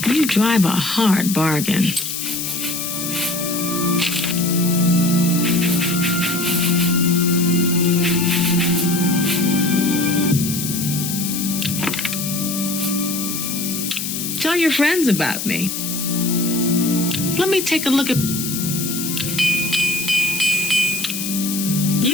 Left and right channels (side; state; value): left; noise; hiss, 4 dB below the sound